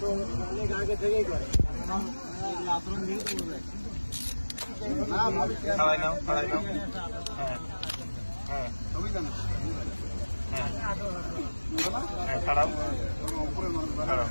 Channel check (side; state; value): both; inverted; correlation -1.00